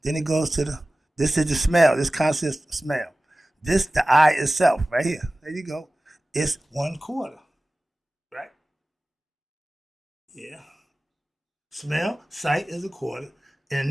Then it goes to this is the smell. This consists of smell. This, the I itself, right here. There you go. It's 1/4. Right? Yeah. Smell, sight is 1/4.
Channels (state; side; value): normal; both; correlation 0.96